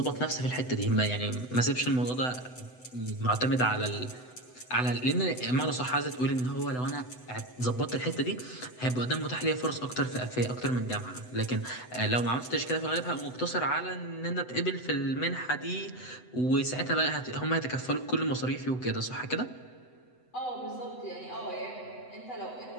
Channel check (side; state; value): right; late; 8.0 ms